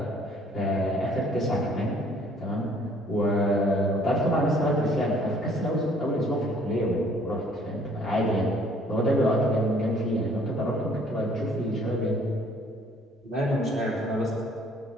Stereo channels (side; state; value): both; normal; correlation 0.59